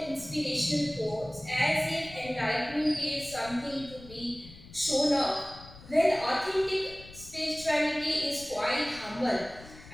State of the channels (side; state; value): left; noise; rumble, 18 dB below the sound